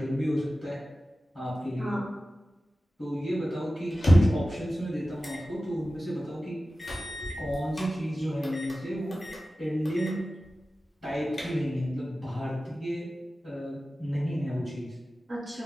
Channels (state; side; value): normal; both; correlation 0.95